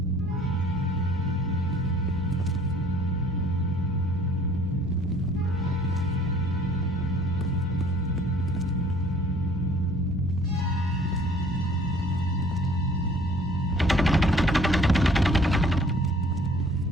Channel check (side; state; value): both; normal; correlation 0.55